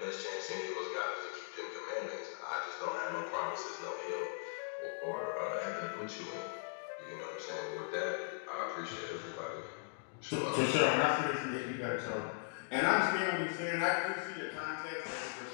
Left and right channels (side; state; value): right; silent; digital silence